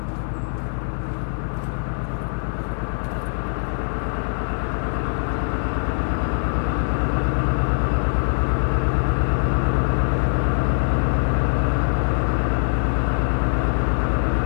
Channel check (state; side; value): silent; right; digital silence